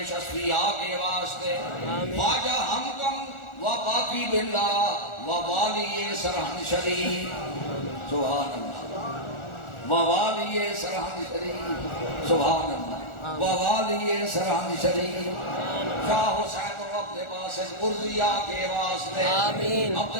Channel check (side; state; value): right; late; 1.4 ms